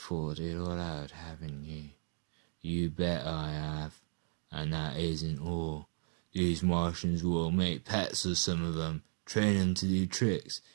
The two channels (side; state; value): left; silent; digital silence